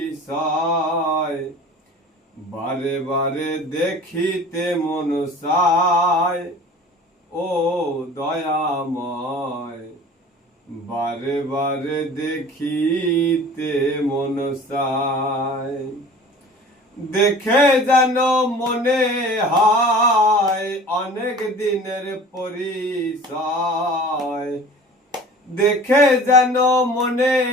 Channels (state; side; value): normal; both; correlation 0.43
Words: বারে বারে দেখিতে মন চায় ও দয়াময়। বারে বারে দেখিতে মন চায়। দেখে যেন মনে হয় অনেক দিনের পরিচয়। দেখে যেন মনে